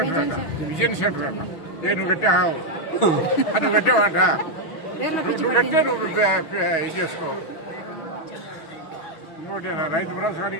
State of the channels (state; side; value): late; right; 6.1 ms